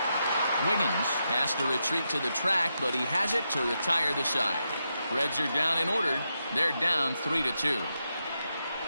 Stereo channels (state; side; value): inverted; both; correlation -0.85